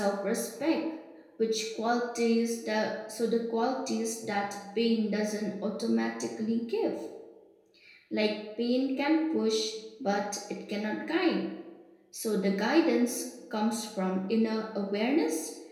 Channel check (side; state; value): both; identical; correlation 1.00